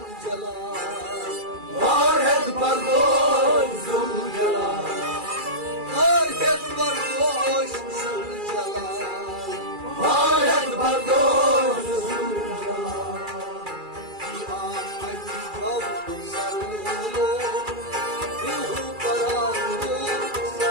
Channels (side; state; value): left; late; 2.4 ms